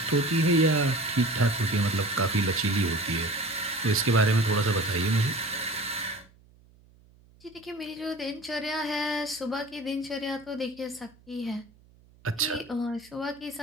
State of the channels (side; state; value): right; noise; hum, 28 dB below the sound